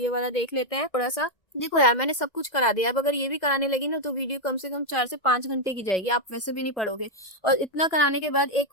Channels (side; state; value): right; late; 2.1 ms